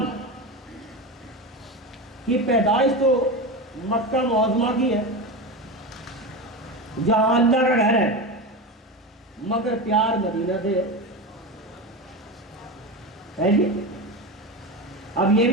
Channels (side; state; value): both; normal; correlation 0.22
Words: کی پیدائش تو مکہ معظمہ کی ہے جہاں اللہ کا گھر ہے، مگر پیار مدینہ سے ہے جی۔ اب یہ